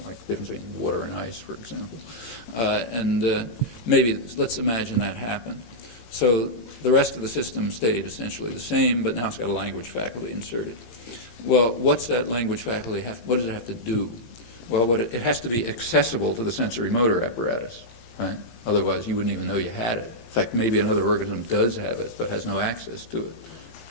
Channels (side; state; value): right; late; 18 ms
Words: like the difference between water and ice, for example. Maybe let's imagine that happened. So the rest of the system stayed essentially the same, but now it's got a language faculty inserted. Well, what's that language faculty what does it have to do? Well, it has to be accessible to the sensory motor apparatus, right? Otherwise, you wouldn't even know you had it. In fact, maybe another organism does have it, but has no access to it.